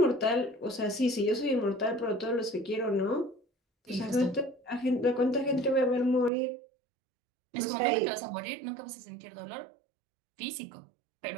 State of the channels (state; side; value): drops out; left; at 6.3 s